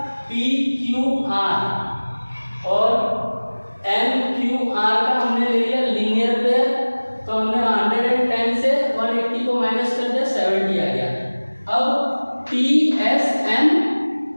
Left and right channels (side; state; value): both; inverted; correlation -1.00